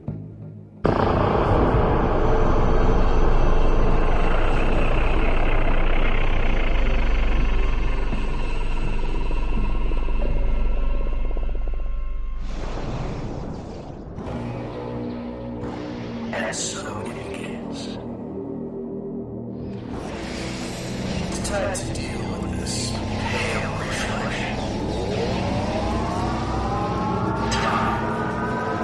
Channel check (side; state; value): both; identical; correlation 1.00